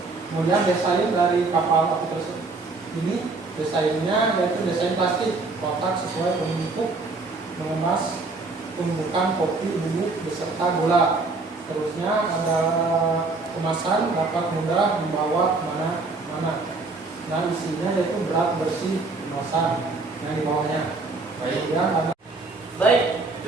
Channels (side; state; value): left; quieter; 3.7 dB